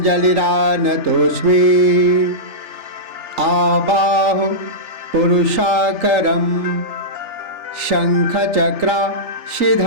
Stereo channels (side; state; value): left; late; 3.4 ms